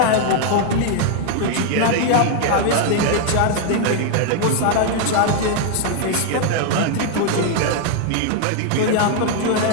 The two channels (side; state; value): both; different; correlation 0.00